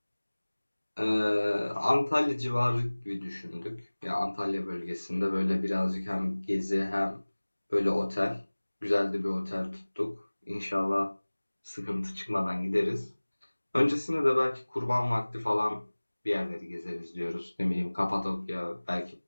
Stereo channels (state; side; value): inverted; both; correlation -1.00